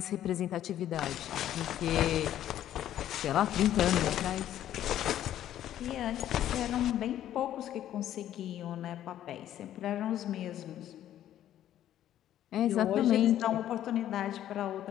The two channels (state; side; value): quieter; right; 11.8 dB